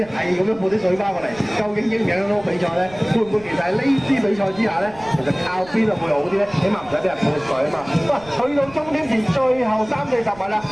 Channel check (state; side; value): noise; right; rumble, 21 dB below the sound